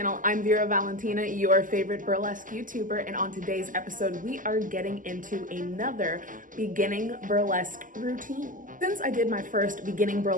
I'm Vera Valentinaa, your favorite burlesque YouTuber, and on today's episode we are getting into another beginning burlesque routine. Since I did my first beginning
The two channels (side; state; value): left; late; 0.38 ms